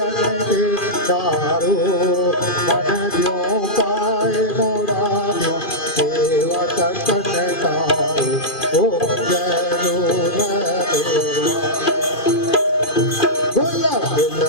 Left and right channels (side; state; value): right; late; 2.4 ms